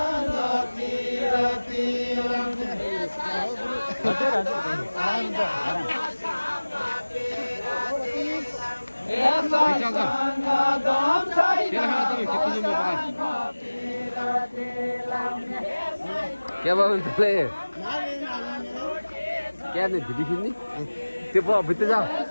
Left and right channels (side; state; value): both; inverted; correlation -1.00